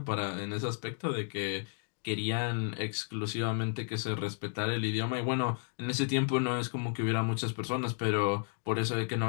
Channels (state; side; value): silent; right; digital silence